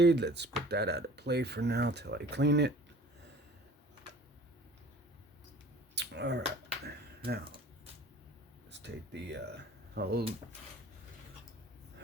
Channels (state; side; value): normal; both; correlation 0.46